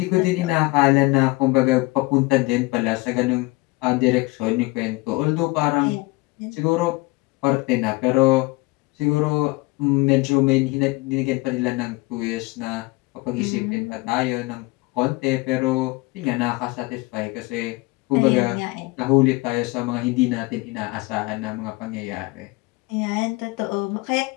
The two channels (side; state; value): right; quieter; 23.6 dB